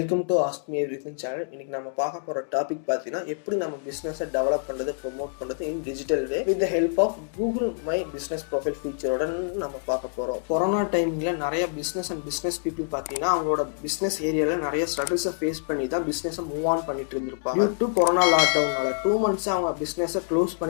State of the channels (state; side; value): silent; right; digital silence